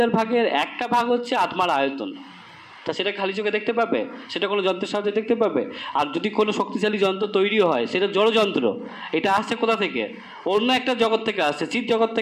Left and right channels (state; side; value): identical; both; correlation 1.00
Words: ভাগের একটা ভাগ হচ্ছে আত্মার আয়তন। তা সেটা খালি চোখে দেখতে পাবে? সেটা কোনো যন্ত্রের সাহায্যে দেখতে পাবে? আর যদি কোনো শক্তিশালী যন্ত্র তৈরি হয়, সেটা জড়যন্ত্র। এটা আসছে কোথা থেকে? অন্য একটা জগৎ থেকে আসছে, চিৎ জগৎ